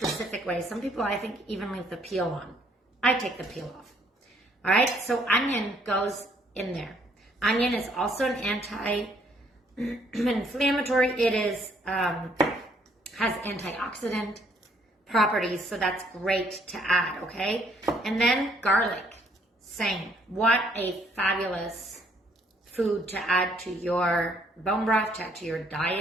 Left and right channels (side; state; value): both; normal; correlation 0.66